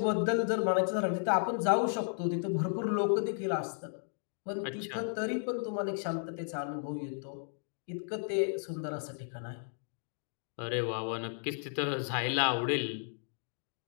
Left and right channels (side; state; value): right; silent; digital silence